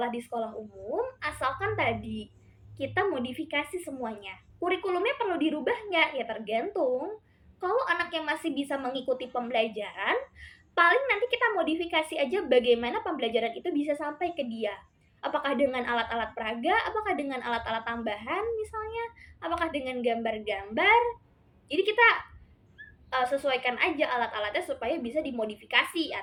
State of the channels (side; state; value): both; identical; correlation 1.00